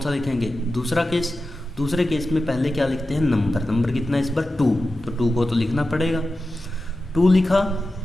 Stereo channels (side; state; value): both; normal; correlation 0.93